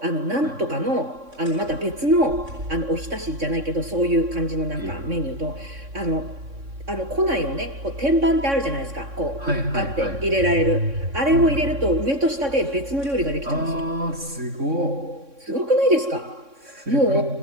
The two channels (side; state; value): left; late; 3.6 ms